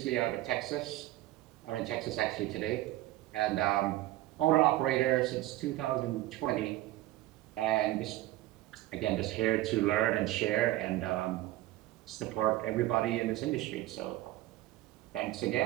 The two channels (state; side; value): quieter; left; 16.2 dB